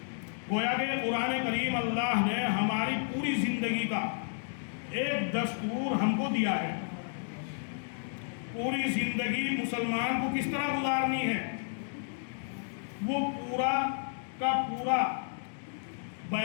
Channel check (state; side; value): silent; right; digital silence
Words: گویا کہ قرآن کریم اللہ نے ہماری پوری زندگی کا ایک دستور ہم کو دیا ہے، پوری زندگی مسلمان کو کس طرح گزارنی ہے وہ پورا کا پورا